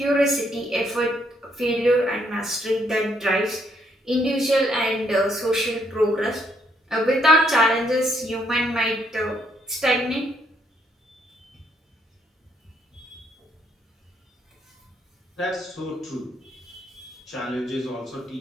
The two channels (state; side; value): normal; both; correlation 0.72